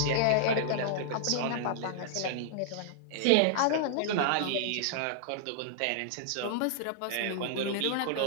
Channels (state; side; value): different; both; correlation -0.01